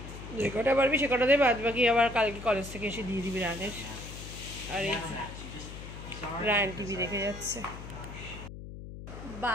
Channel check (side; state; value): left; noise; hum, 11 dB below the sound